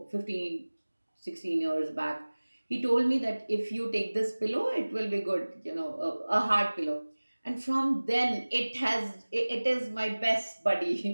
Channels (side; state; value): both; inverted; correlation -1.00